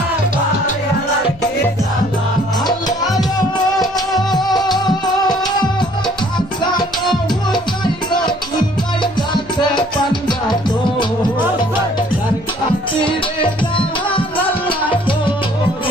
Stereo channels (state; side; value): noise; left; hum, 23 dB below the sound